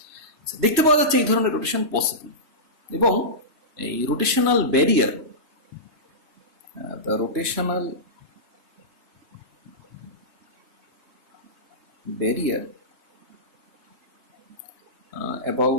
দেখতে পাওয়া যাচ্ছে এই ধরনের রোটেশন পসিবল, এবং এই rotational barrier, the rotational barrier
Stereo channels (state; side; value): late; left; 3.0 ms